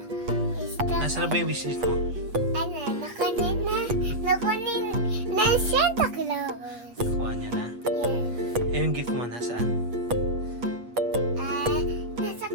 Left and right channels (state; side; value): late; left; 8.1 ms